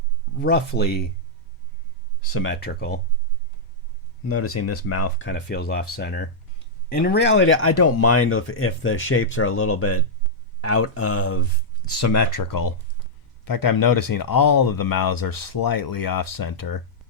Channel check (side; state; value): both; normal; correlation -0.08